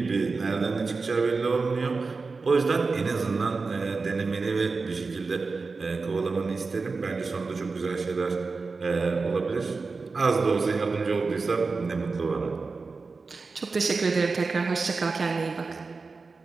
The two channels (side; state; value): left; quieter; 4.2 dB